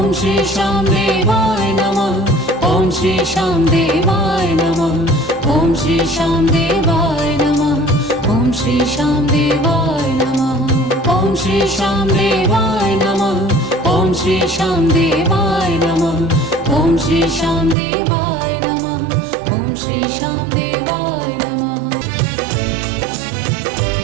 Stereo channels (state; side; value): drops out; left; at 17.8 s